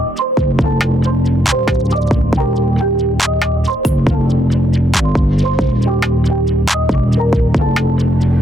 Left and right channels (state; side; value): normal; both; correlation 0.77